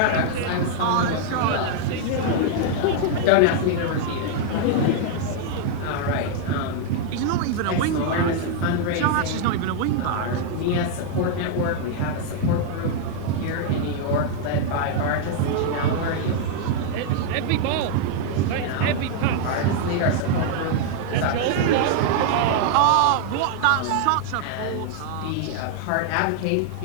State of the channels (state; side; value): different; both; correlation 0.00